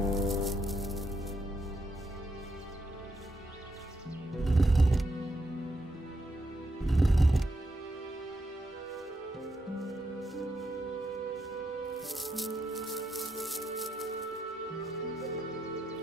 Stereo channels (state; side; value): normal; both; correlation 0.81